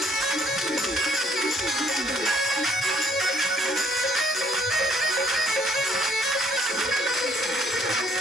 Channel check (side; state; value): both; normal; correlation 0.64